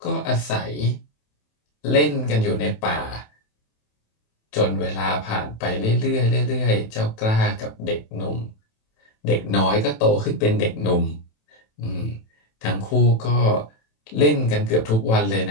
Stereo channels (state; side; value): late; right; 27 ms